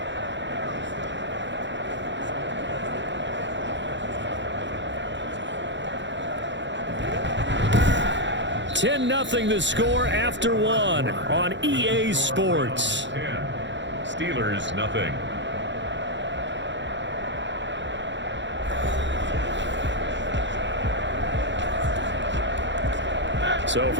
10-0 the score after 1 on EA Sports. 10. Steelers, nothing. So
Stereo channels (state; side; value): late; left; 0.53 ms